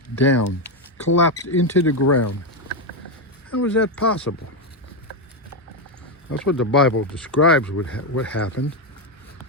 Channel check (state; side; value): normal; both; correlation 0.06